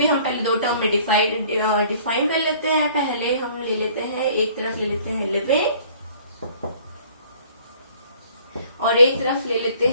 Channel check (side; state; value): both; inverted; correlation -0.55